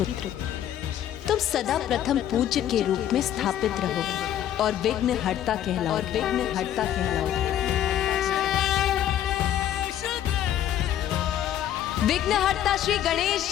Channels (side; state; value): right; quieter; 11.1 dB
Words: तुम सदा प्रथम पूज्य के रूप में स्थापित रहोगे और विघ्नहर्ता कहलाओगे। विघ्नहर्ता श्री गणेश